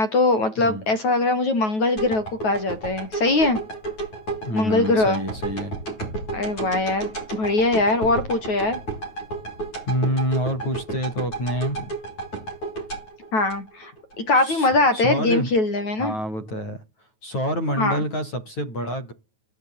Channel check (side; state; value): right; late; 9.3 ms